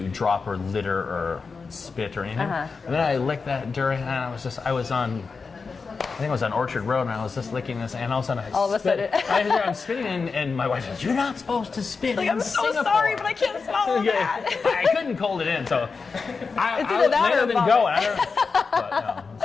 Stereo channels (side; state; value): right; quieter; 4.8 dB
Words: drop or litter or spit or anything. And then I licked that durian, and I think I was on Orchard Road, and I was just licking this, and all of a sudden I'm spitting, and my wife says, "You're not supposed to spit in I'm so Singapore." sorry, but I can't smell that. I couldn't hold it in, so I either that or let it vomit. go. But